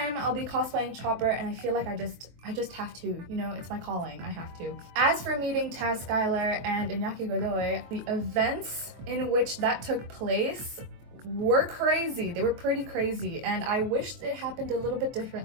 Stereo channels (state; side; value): late; left; 23 ms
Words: I'll be cosplaying Chopper, and I feel like I just have to, you know, it's my calling, I have to. As for meeting Skyler and Iñaki Godoy, the events in which that took place were crazy. They were pretty crazy, and I wished it happened a little bit